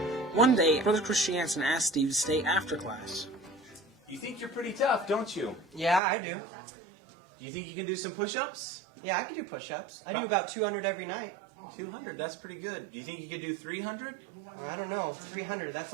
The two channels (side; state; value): left; drops out; at 6.0 s